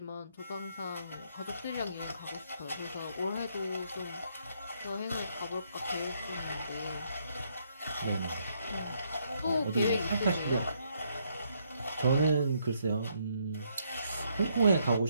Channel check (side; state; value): both; inverted; correlation -0.73